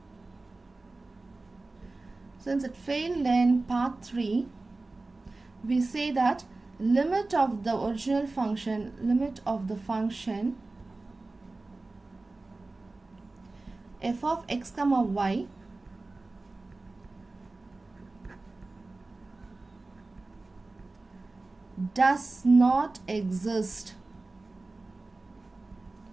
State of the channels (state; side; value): quieter; left; 3.3 dB